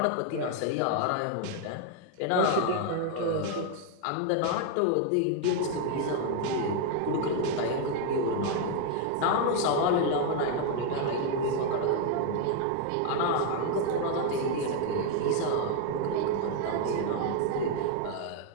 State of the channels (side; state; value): both; different; correlation 0.00